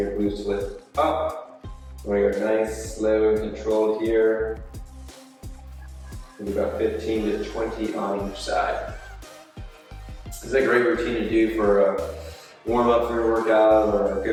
glutes to lift up. We're going nice, slow, and controlled here. Maybe about 15 to 20 on each side. This is a great routine to do for a warm up for your workout or a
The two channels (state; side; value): identical; both; correlation 1.00